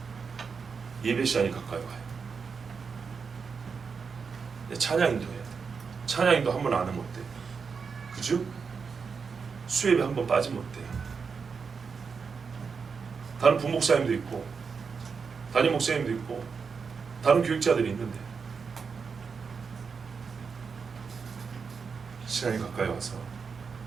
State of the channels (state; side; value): quieter; left; 5.5 dB